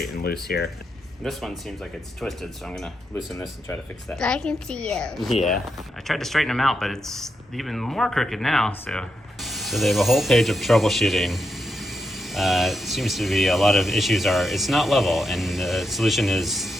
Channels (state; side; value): normal; both; correlation 0.83